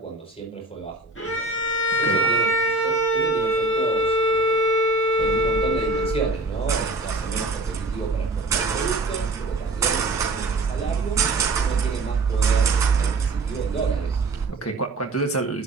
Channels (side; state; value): left; quieter; 3.0 dB